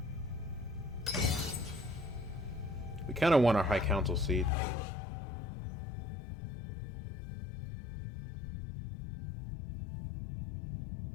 We kind of want our High Council seat.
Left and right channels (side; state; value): right; drops out; at 4.5 s